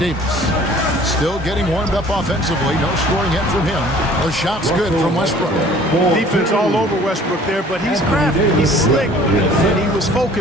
Still getting warmed up offensively. No scoring hit from him. The shot's good from Westbrook. Defense all over Westbrook there, but he's crafty. He's slick, and he was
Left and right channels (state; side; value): normal; both; correlation 0.51